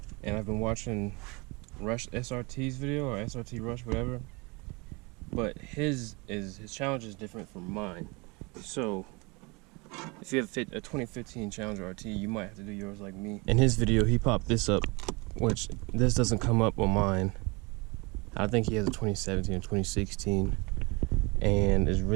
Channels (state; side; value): quieter; left; 27.5 dB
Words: and I've been watching Rush SRT's video, or SRT Rush, whatever. But his Challenger is different from mine. So if you have a 2015 Challenger RT, you might have to do yours like me. In his video, he popped this up, which this doesn't come up on mine. I think he has a 2017 or 2016, and it's